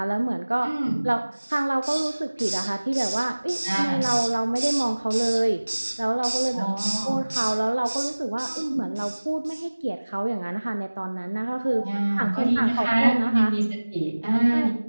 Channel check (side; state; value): both; inverted; correlation -1.00